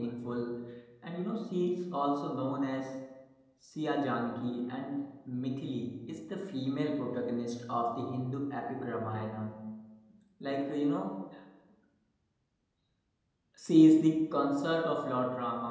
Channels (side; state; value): both; identical; correlation 1.00